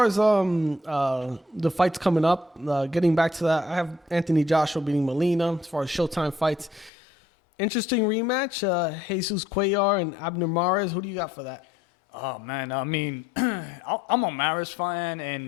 as the fights coming up, getting back to that, I have Anthony Joshua beating Molina. As far as Showtime fights, interesting rematch. Jesus Cuellar and Abner Mares. Who do you got for that? Oh man, I mean, I'm a Maris fan,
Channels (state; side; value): drops out; right; at 6.9 s